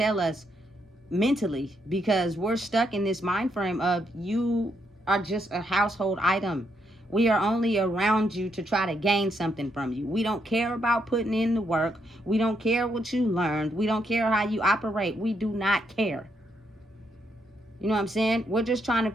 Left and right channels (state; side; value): normal; both; correlation 0.77